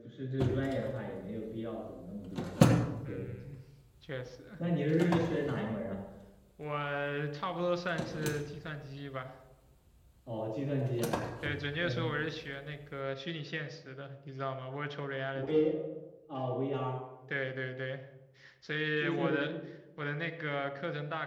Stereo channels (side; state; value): both; identical; correlation 1.00